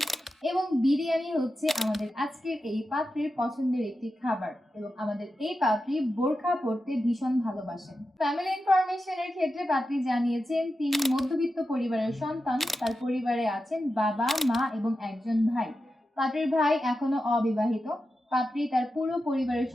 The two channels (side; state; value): both; normal; correlation 0.90